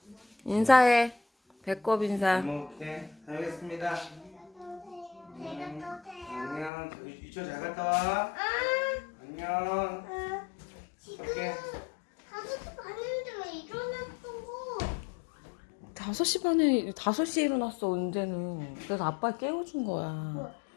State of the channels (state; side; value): drops out; right; at 6.7 s